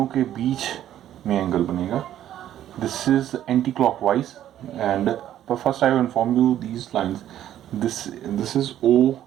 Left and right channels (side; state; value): left; quieter; 11.7 dB